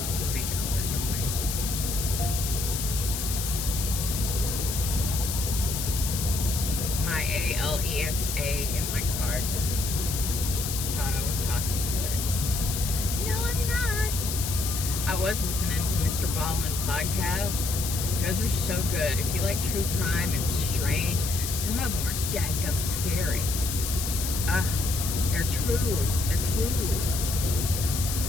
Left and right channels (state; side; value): noise; left; hiss, 4 dB below the sound